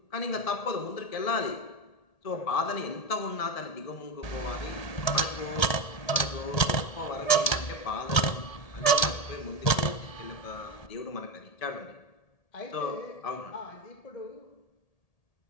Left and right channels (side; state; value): right; late; 1.8 ms